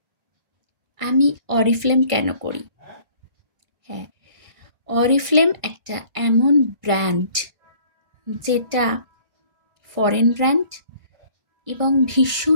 আমি অরিফ্লেম কেন করি। হ্যাঁ, অরিফ্লেম একটা এমন ব্র্যান্ড যেটা ফরেন ব্র্যান্ড এবং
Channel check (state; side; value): late; left; 1.5 ms